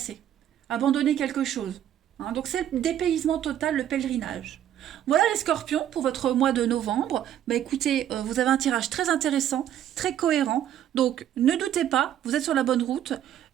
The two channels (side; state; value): left; quieter; 10.9 dB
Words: abandonner quelque chose. Hein. Donc c'est le dépaysement total, le pèlerinage. Voilà les scorpions pour votre mois de novembre. Bah écoutez, vous avez un tirage très intéressant, très cohérent. Donc ne doutez pas, vous êtes sur la bonne route.